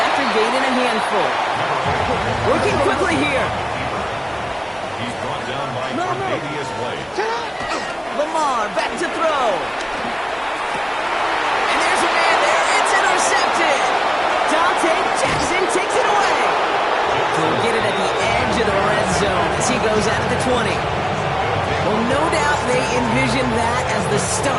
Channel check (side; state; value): both; identical; correlation 1.00